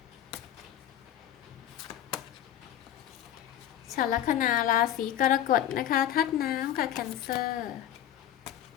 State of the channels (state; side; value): quieter; right; 11.3 dB